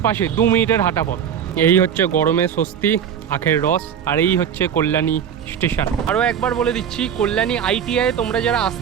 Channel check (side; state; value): left; quieter; 8.4 dB